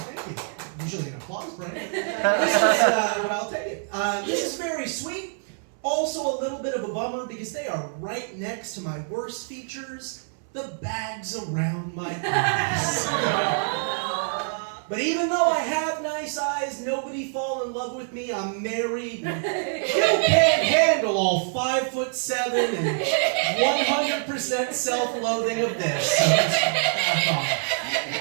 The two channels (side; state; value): left; silent; 61 dB below the other